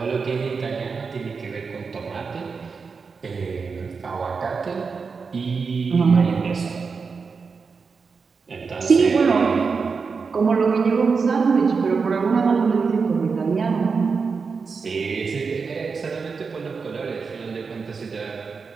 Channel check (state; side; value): quieter; left; 5.1 dB